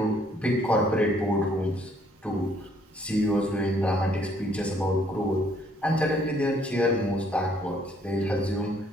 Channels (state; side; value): normal; both; correlation 0.65